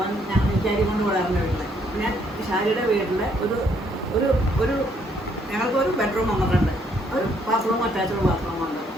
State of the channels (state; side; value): normal; both; correlation 0.69